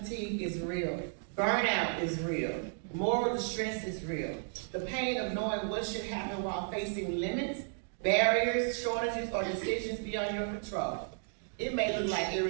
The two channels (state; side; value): silent; left; 55 dB below the other